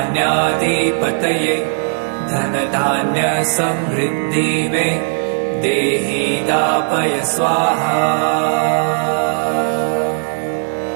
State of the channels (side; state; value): left; silent; 60 dB below the other